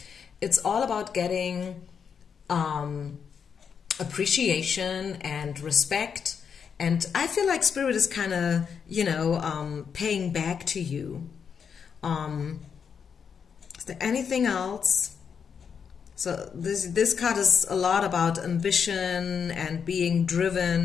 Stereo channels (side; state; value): right; quieter; 6.8 dB